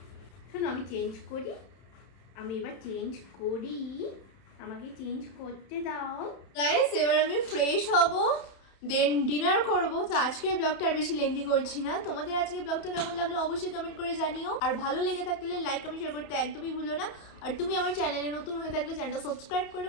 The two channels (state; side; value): late; right; 31 ms